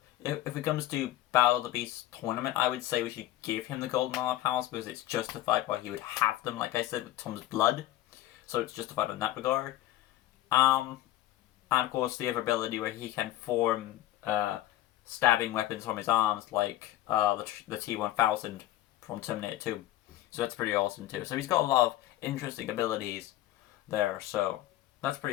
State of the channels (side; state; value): right; quieter; 14.5 dB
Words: if it comes to Battle of the Beast tournament, I would say we should give him the golden armor powers because it's justified why he would have them, like I said, with Tom's blood. So it's justified in that regard. And of course the other ability where he can form stabbing weapons from his arms, like the T-1000 from Terminator 2. So that's pretty awesome too. So he's got a lot of interesting abilities there, so that's